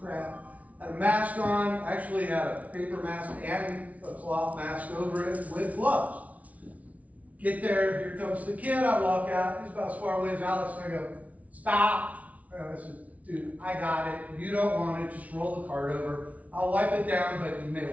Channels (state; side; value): late; left; 0.069 ms